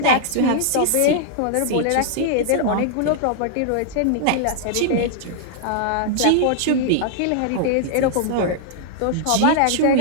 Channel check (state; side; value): different; both; correlation -0.01